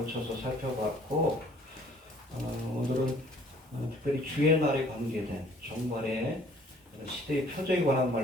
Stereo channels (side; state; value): both; normal; correlation 0.57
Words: 살펴봤고, 오늘은 특별히 주의 날에 관계된 종말의 시대의 표적에 관한